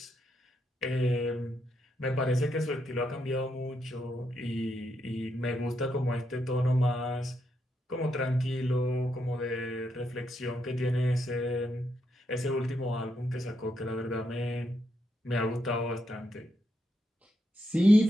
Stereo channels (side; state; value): both; normal; correlation 0.81